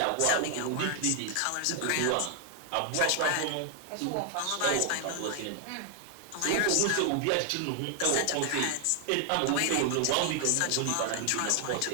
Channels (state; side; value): different; both; correlation 0.00